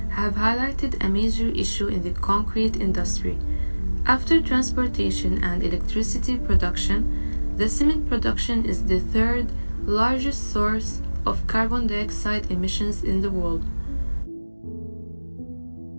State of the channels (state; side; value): inverted; both; correlation -1.00